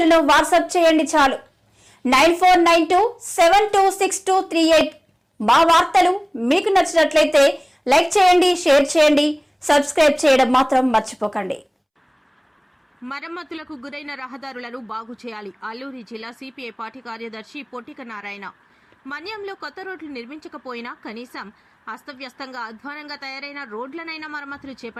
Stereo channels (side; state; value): both; identical; correlation 1.00